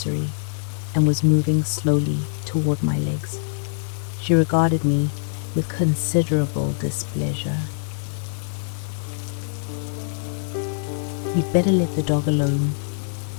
and was moving slowly toward my legs. She regarded me with considerable displeasure. "You'd better let the dog alone,"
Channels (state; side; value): silent; right; 63 dB below the other